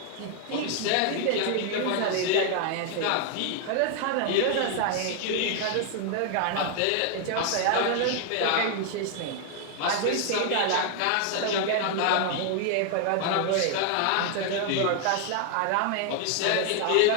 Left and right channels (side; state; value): both; different; correlation 0.01